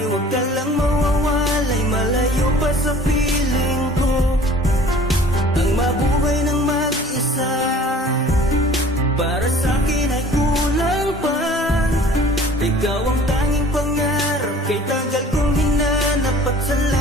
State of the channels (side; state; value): both; normal; correlation 0.49